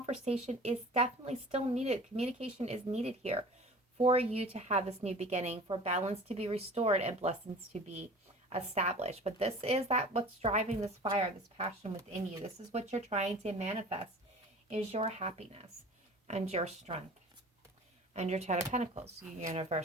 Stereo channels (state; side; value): normal; both; correlation 0.42